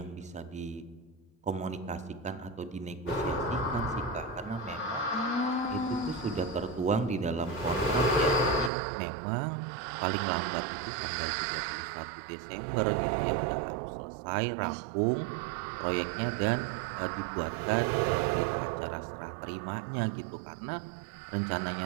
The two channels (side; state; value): left; drops out; at 8.7 s